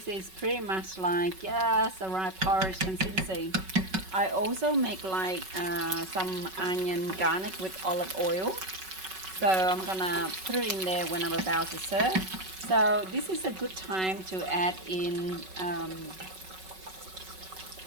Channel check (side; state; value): left; late; 5.3 ms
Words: is pretty much like, yes, the right porridge consistency. I also make like some onion garnish with olive oil. So I'm gonna put it in there when I'm about to serve. So this is a good time to add in